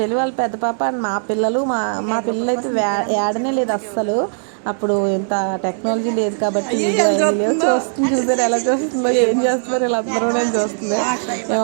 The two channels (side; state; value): left; silent; digital silence